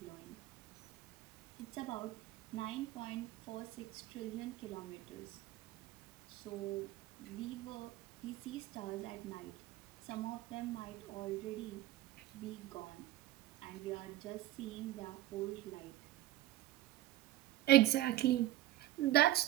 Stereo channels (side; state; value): left; quieter; 15.1 dB